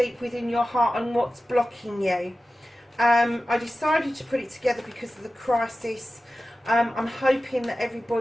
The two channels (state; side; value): normal; both; correlation 0.95